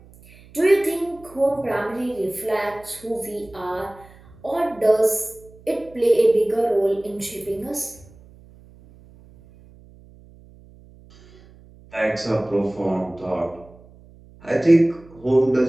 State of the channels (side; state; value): right; noise; hum, 24 dB below the sound